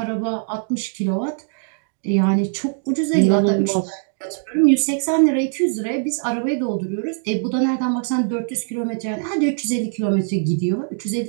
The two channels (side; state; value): left; silent; 65 dB below the other